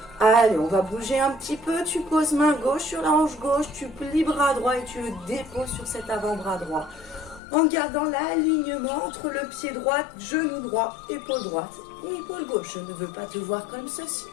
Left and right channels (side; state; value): right; drops out; at 7.4 s